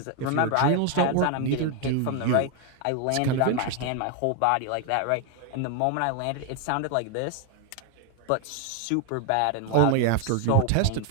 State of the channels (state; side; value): different; both; correlation 0.01